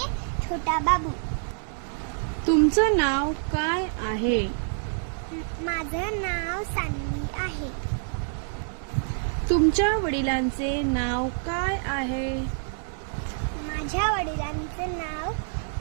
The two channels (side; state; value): left; silent; digital silence